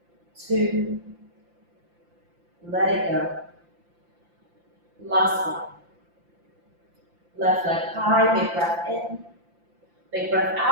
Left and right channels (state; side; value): late; left; 5.8 ms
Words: 2. Let it go. Last one. Left leg high, big breath in. Big breath